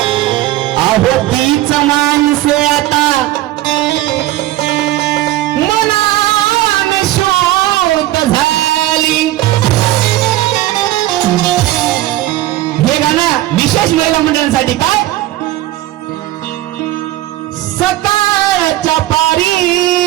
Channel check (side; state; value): left; quieter; 15.5 dB